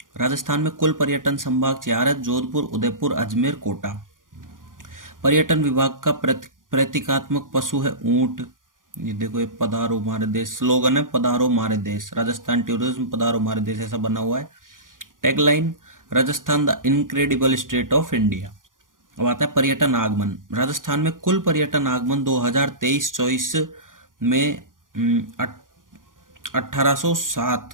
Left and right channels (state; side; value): late; left; 0.89 ms